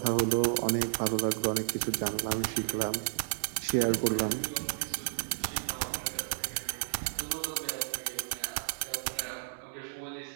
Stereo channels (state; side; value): silent; left; digital silence